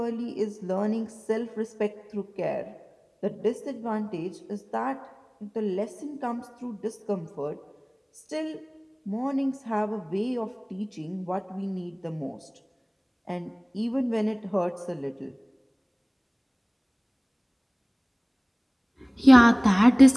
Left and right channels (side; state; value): both; identical; correlation 1.00